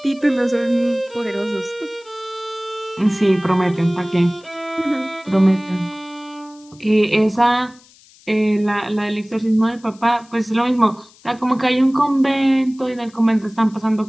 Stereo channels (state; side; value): noise; left; hiss, 27 dB below the sound